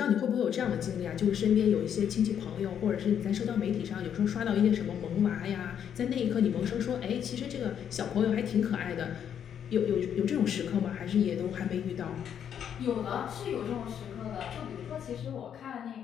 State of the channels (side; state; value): right; quieter; 8.8 dB